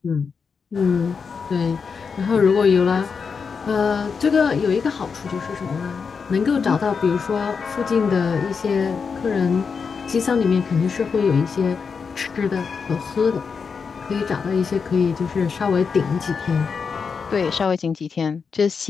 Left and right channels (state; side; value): quieter; right; 5.6 dB